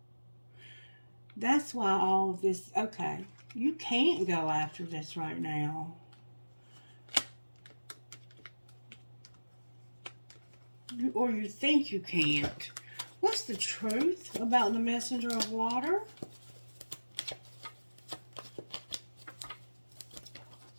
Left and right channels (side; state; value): both; inverted; correlation -1.00